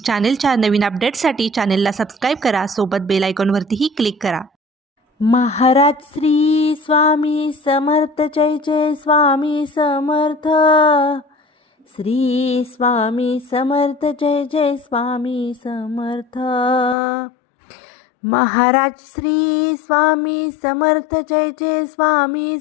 चॅनेलच्या नवीन अपडेट्ससाठी चॅनेलला सबस्क्राईब करा. सोबत बेल आयकॉनवरतीही क्लिक करा. महाराज श्री स्वामी समर्थ, जय जय स्वामी समर्थ. श्री स्वामी समर्थ, जय जय स्वामी समर्थ. महाराज श्री स्वामी समर्थ, जय जय स्वामी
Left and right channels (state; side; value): drops out; right; at 16.9 s